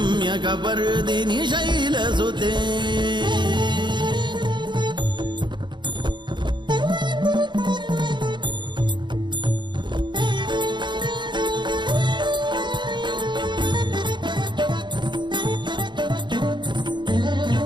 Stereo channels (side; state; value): left; late; 0.22 ms